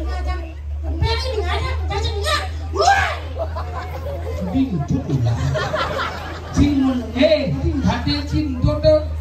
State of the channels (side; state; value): both; identical; correlation 1.00